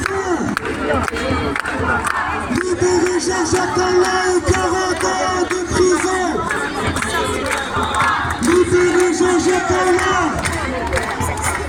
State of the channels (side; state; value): both; identical; correlation 1.00